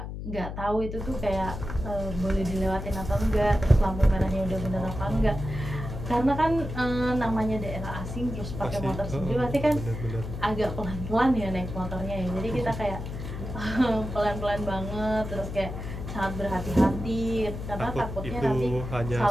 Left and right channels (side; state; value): left; noise; hum, 7 dB below the sound